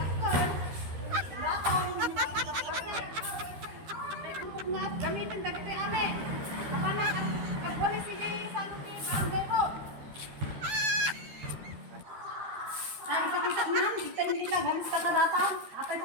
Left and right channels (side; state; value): left; late; 13 ms